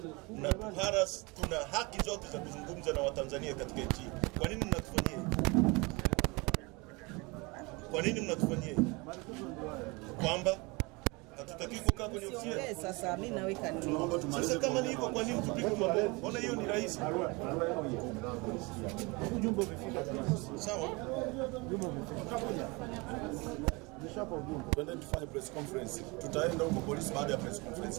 mnatuharas, tuna haki zote za kuzungumza na Watanzania katika nchi. Kwa nini mnatufanyia hivi? Kwa nini mnatufanyia hivi? Kwamba hatutaki kukaa kwenye ofisi yetu. Sasa mimi naweka nini? Sasa kama ni hivyo, kwa nini tupige mabomu? Mbona hiyo ni rahisi? Ujumbe umefika. Sawa. Ujumbe umefika. Twende tufanye press conference. Tutaenda huko polisi baada ya press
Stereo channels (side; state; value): left; quieter; 26.5 dB